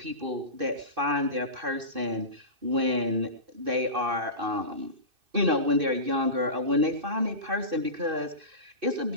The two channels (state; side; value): late; left; 2.6 ms